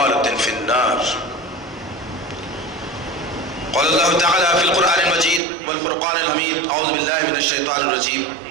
في النار. قال الله تعالى في القرآن المجيد والفرقان الحميد أعوذ بالله من الشيطان الرجيم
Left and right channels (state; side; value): drops out; left; at 5.4 s